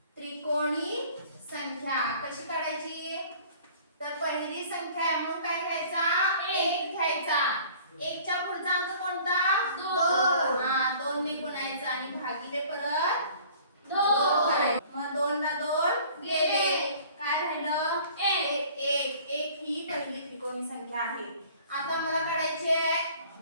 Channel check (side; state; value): both; inverted; correlation -0.50